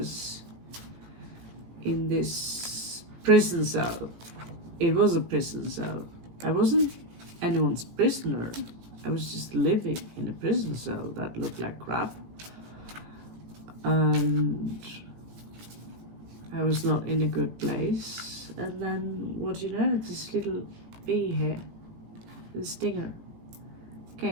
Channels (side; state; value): left; late; 18 ms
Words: in this prison cell, it was a prison cell. I wasn't anyone's prisoner. I was just living in a prison cell that looked like crap. And I was not in a good place. And then, what do you know, this little bee here, the stinger,